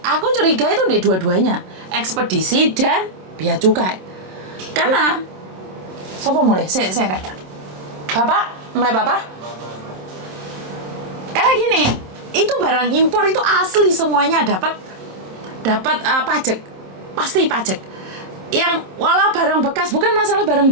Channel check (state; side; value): late; left; 27 ms